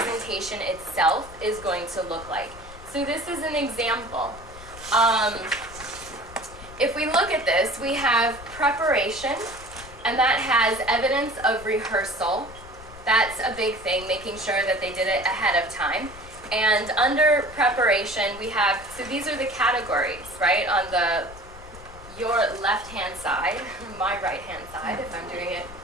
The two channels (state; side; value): noise; left; rumble, 17 dB below the sound